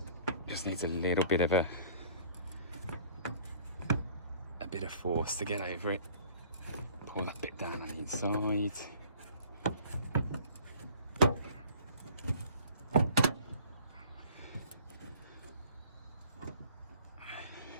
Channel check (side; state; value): both; inverted; correlation -0.51